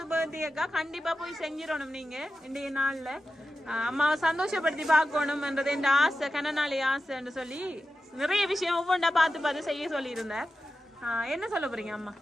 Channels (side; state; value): both; normal; correlation 0.92